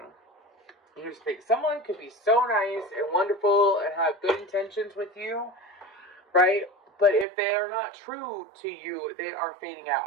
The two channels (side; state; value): left; drops out; at 7.2 s